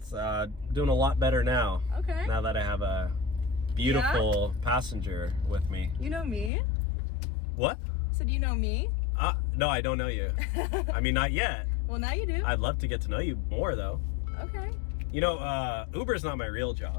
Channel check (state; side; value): drops out; right; at 6.5 s